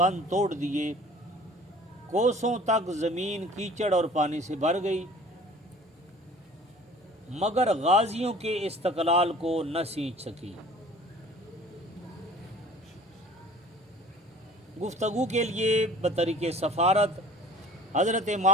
توڑ دیے، کوسوں تک زمین کیچڑ اور پانی سے بھر گئی، مگر غازیوں کے استقلال کو نہ سینچ سکی۔ گفتگو کے لیے بطریق سفارت حضرت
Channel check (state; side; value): normal; both; correlation 0.46